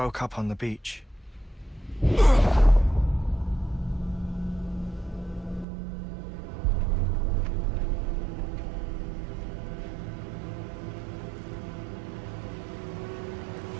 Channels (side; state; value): left; drops out; at 5.7 s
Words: up on the beach.